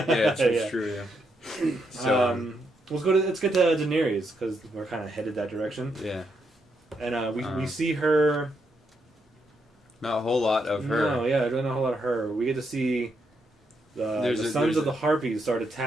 Yeah, it's Yeah. true. Yeah. So, let's get to Daenerys because we're kind of headed that direction. yeah, And we see her. not a whole lot of her. No, yeah, not a whole lot of her. We get to see the sons of the Harpies start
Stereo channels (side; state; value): both; normal; correlation 0.79